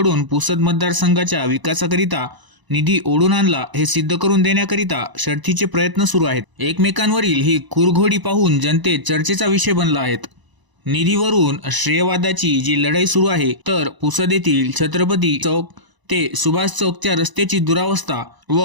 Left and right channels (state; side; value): late; left; 1.0 ms